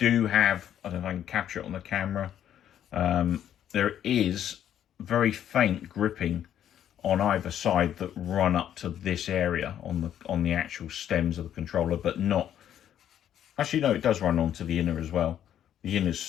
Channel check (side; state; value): right; quieter; 10.4 dB